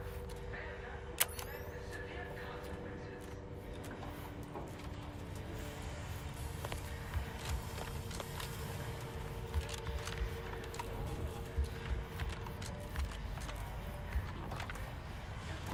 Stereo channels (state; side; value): identical; both; correlation 1.00